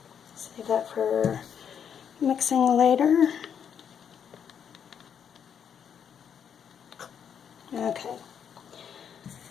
Save that for mixing later. Okay.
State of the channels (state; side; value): quieter; right; 8.0 dB